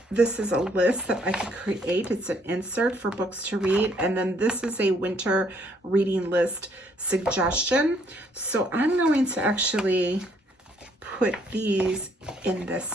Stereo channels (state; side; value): normal; both; correlation 0.66